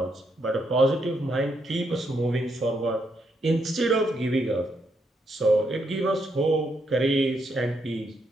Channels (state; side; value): normal; both; correlation 0.78